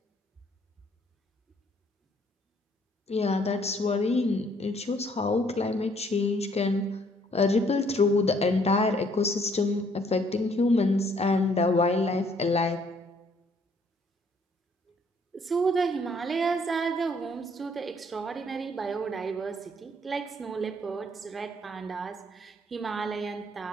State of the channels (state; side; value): normal; both; correlation 0.64